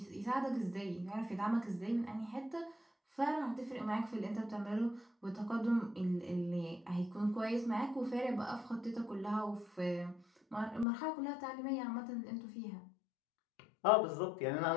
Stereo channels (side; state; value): right; drops out; at 10.9 s